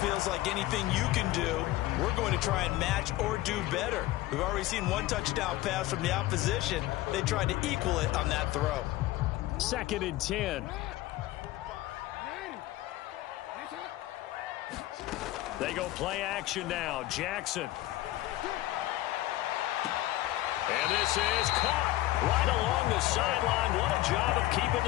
like anything you can do, we're going to try and match or do better. We've already seen one touchdown pass from the opposition. They tried to equal it on that throw. 2nd and 10. They go play action now. Jackson. And this is caught right along the sideline. What a job of keeping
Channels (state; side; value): quieter; right; 16.4 dB